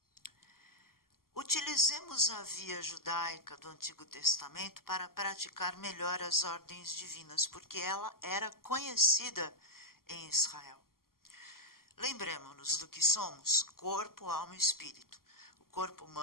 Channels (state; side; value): late; right; 0.92 ms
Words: Utilizemos a via judaica do Antigo Testamento para praticar melhor as ordens divinas, porque ela era conhecida em Israel. Lembremos-nos do que somos: corpo, alma e espírito. O corpo